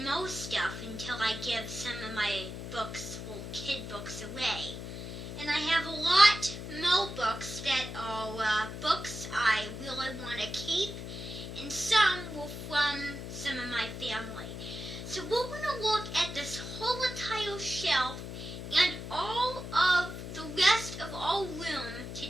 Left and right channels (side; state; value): left; noise; hum, 8 dB below the sound